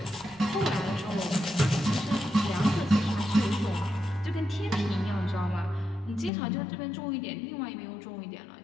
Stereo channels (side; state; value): right; drops out; at 6.3 s